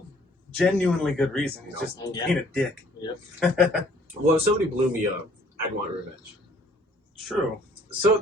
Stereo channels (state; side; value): normal; both; correlation 0.59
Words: genuinely good reason. He's just being a dick. Yep. Well, if somebody blew me up, I'd want revenge. True. So